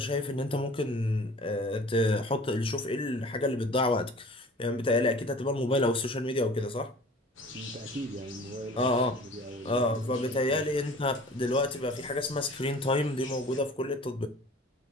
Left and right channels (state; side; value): normal; both; correlation 0.45